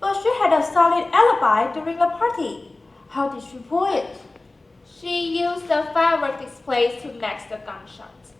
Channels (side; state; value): right; quieter; 3.1 dB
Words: But she had a solid alibi during the party. How did she pull it? She used the firework displays to match the gunshots.